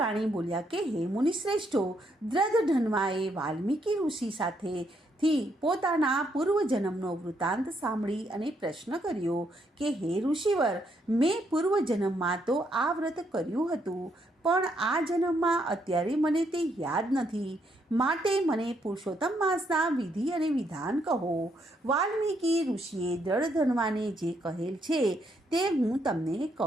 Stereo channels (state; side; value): normal; both; correlation 0.75